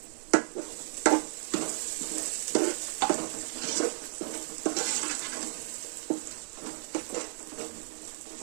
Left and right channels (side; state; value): left; silent; digital silence